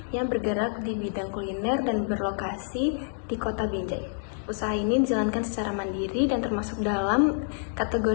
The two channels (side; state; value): right; silent; digital silence